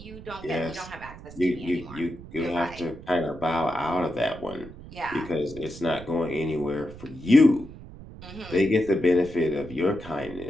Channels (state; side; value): noise; right; rumble, 15 dB below the sound